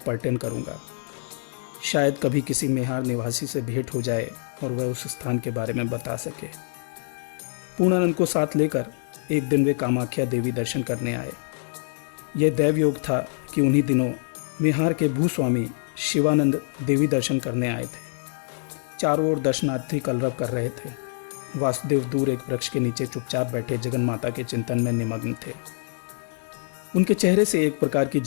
पर्यटन करूँगा। शायद कभी किसी मेहार निवासी से भेंट हो जाए और वह उस स्थान के बारे में बता सके। पूर्णानंद को साथ लेकर एक दिन वे कामाख्या देवी दर्शन करने आए। यह दैवयोग था कि उन्हीं दिनों मेहार के भूस्वामी शिवानंद देवी दर्शन करने आए थे। चारों ओर दर्शनार्थी कलरव कर रहे थे। वासुदेव दूर एक वृक्ष के नीचे चुपचाप बैठे जगन माता के चिंतन में निमग्न थे। उनके चेहरे से एक प्रकार की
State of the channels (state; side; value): silent; right; digital silence